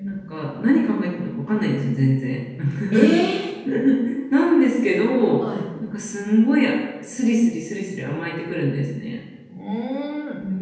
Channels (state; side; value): identical; both; correlation 1.00